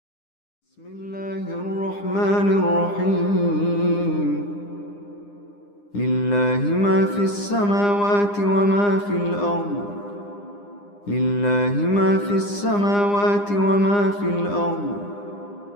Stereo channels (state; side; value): late; right; 9.9 ms